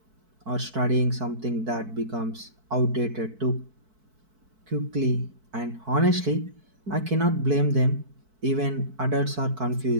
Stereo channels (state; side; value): late; left; 4.6 ms